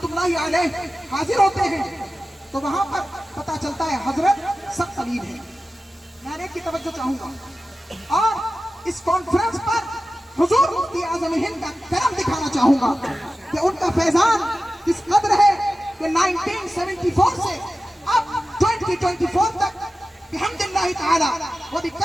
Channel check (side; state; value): both; normal; correlation 0.95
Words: अलैह हाजिर होते हैं, तो वहां पर पता चलता है हजरत सख्त अलीम है। मैं एक की तवज्जो चाहूंगा, और इस कॉन्फ्रेंस पर हुजूर मुफ्ती आजम हिंद का करम दिखाना चाहूंगा कि उनका फैजान किस कदर है कि 1974 से अब 2024 तक बिहम्दिल्लाहि ताला व